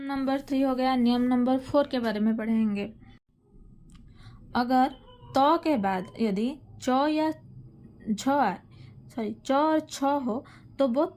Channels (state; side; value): identical; both; correlation 1.00